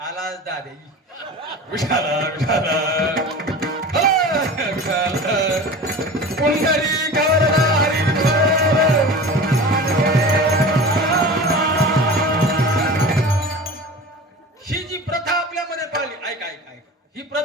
दादे विठाला विठाला कुंडली गवरला हरी ही जी प्रथा आपल्यामध्ये पाळली. ऐका ऐका ऐका ही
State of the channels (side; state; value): both; normal; correlation 0.35